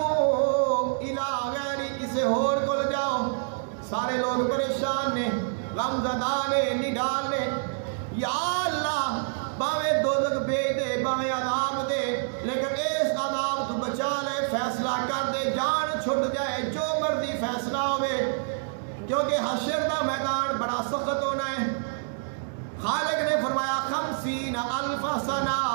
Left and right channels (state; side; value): silent; left; digital silence